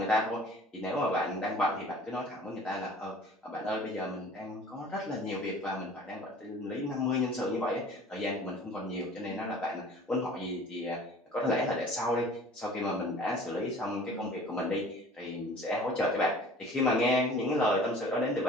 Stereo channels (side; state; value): both; normal; correlation 0.46